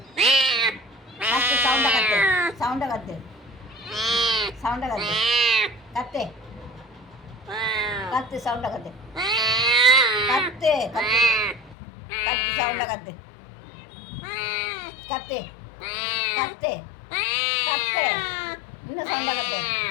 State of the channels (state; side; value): drops out; right; at 11.8 s